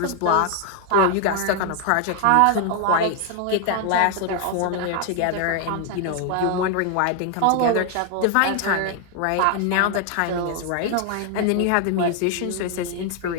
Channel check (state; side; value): different; both; correlation 0.00